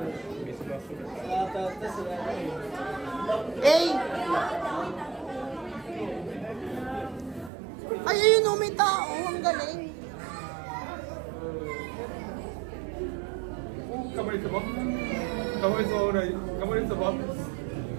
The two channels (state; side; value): drops out; left; at 7.5 s